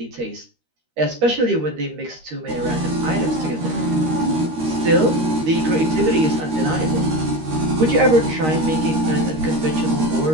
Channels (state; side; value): late; left; 13 ms